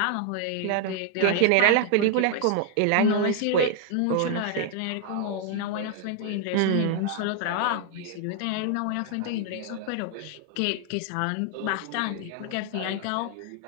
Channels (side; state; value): both; different; correlation 0.00